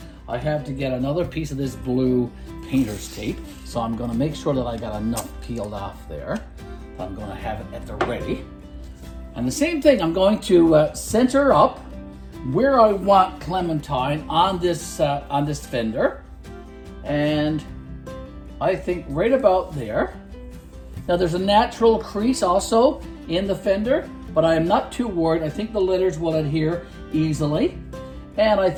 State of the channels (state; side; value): identical; both; correlation 1.00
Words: I have to get another piece of this blue painter's tape, so I'm going to make sure that I got enough peeled off there. I'm going to have it at the ready. And the same thing, I'm going to center up where I want Clementine on this fender, and I think right about there. Now there's a natural crease also in the fender, but I am not too worried. I think the letters will adhere easily, and I